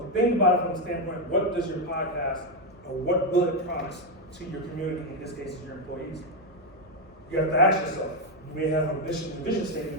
think about it from the standpoint, what does your podcast, or what will it promise to your community, in this case, your employees? You have to ask yourself, you may have a mission and vision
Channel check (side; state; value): both; normal; correlation 0.05